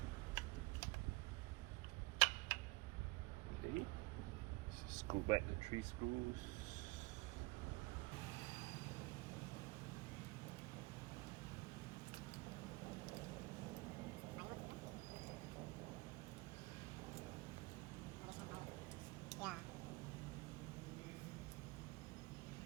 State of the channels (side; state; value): left; quieter; 23.2 dB